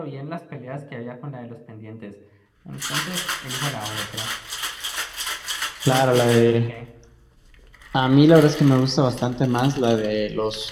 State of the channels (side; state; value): both; identical; correlation 1.00